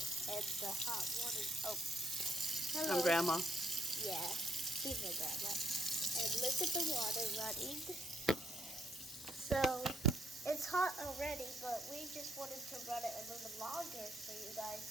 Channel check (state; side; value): normal; both; correlation 0.72